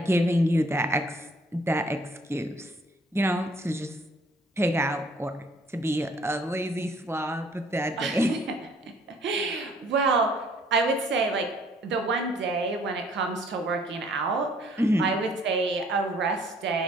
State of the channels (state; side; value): normal; both; correlation 0.60